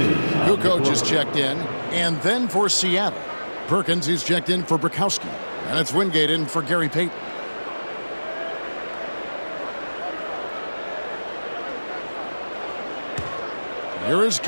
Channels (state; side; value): inverted; both; correlation -1.00